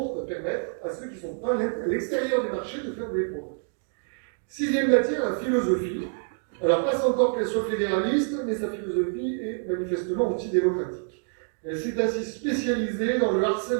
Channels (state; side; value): silent; left; 60 dB below the other